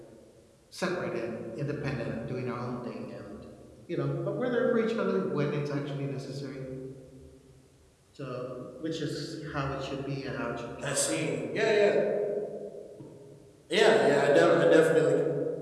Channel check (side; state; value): both; identical; correlation 1.00